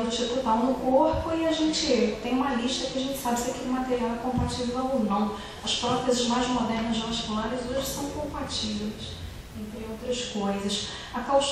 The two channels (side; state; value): both; identical; correlation 1.00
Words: do tipo tal no corpo, e a gente tem uma lista que a gente sabe se aquele material é compatível ou não. As próteses mais modernas vasculares hoje são compatíveis, entre outras coisas. A